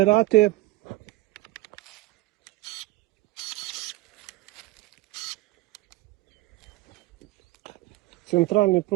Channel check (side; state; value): left; quieter; 19.4 dB